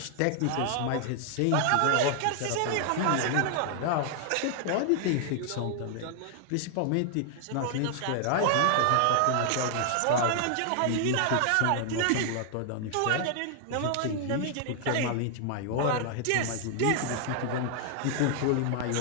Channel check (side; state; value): both; different; correlation 0.00